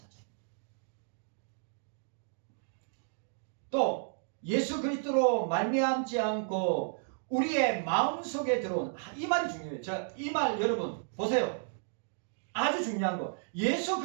또 예수 그리스도로 말미암지 않고 우리의 마음속에 들어온 이 말이 중요해요. 자, 이 말 여러분 보세요. 아주 중요한 거. 예수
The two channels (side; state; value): left; silent; digital silence